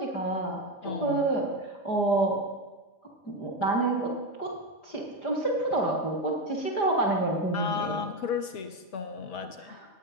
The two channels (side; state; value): right; late; 5.5 ms